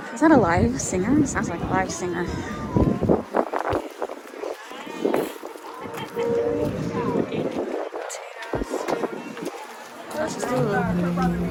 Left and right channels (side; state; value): both; identical; correlation 1.00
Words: Is that a live singer? It sounds like a live singer. Let's just do